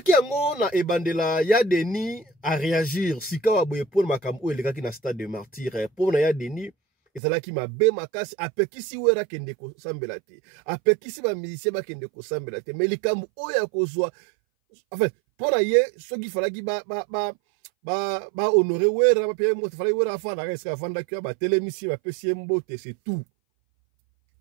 yango na ebandela ya Denis à réagir sika wa boye pour makambo elekaki na stade de martyr pour na ya Denis ezalaki mabe makasi apekisi wera kende ko sambela te apekisi ba musicien ba kende ko sambela te mais likambo oya kozwa en fait pour ye soki falaki ba honorer wera ba payer moto falaki wera afanda reska afanda ki ba telemisi ba pesi mbote c'est tout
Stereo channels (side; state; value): left; drops out; at 7.2 s